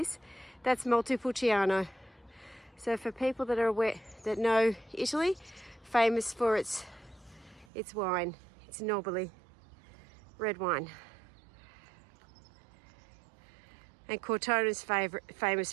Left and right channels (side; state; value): left; drops out; at 7.7 s